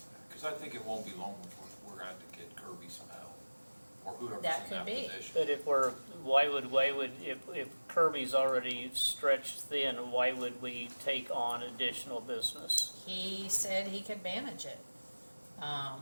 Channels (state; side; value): inverted; both; correlation -1.00